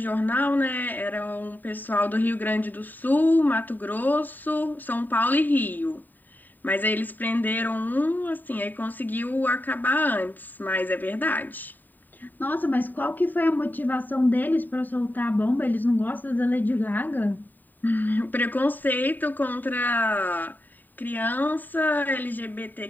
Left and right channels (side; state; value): right; late; 0.089 ms